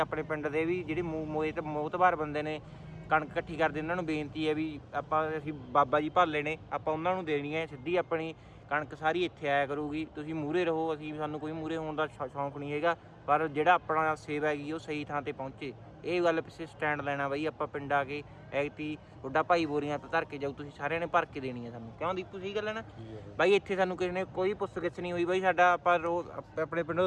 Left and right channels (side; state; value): both; identical; correlation 1.00